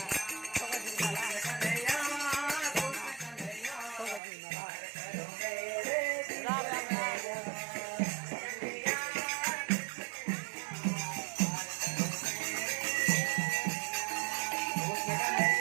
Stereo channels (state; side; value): drops out; left; at 4.2 s